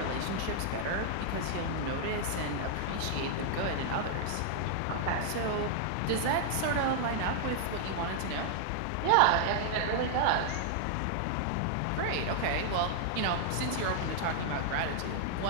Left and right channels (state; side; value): different; both; correlation 0.00